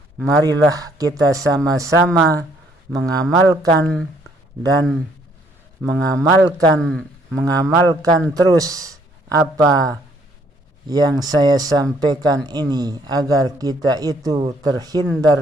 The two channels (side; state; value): both; normal; correlation 0.65